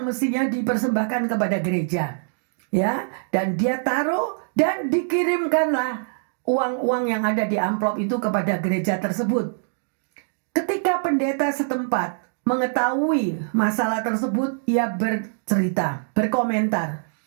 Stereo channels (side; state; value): left; silent; digital silence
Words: mestinya dipersembahkan kepada gereja. Ya, dan dia taruh dan dikirimkanlah uang-uang yang ada di amplop itu kepada gereja tersebut. Ketika pendeta setempat mengetahui masalah tersebut, ia bercerita, berkomentar.